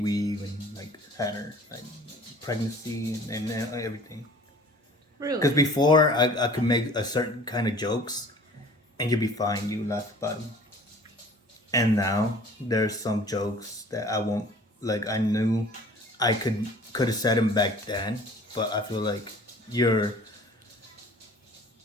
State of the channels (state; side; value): normal; both; correlation 0.47